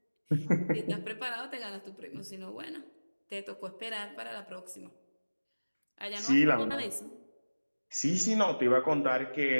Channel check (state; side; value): inverted; both; correlation -1.00